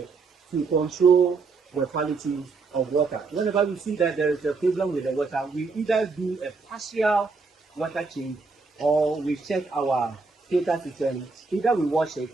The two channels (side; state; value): left; quieter; 4.3 dB